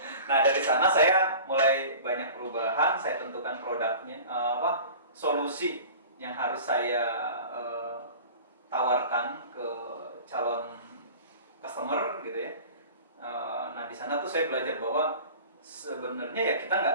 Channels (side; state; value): both; inverted; correlation -0.40